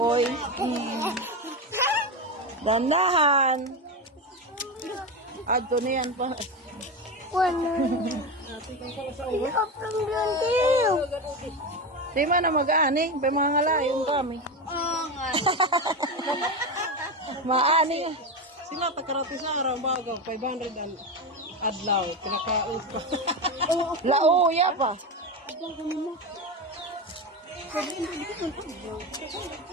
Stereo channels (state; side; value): normal; both; correlation 0.17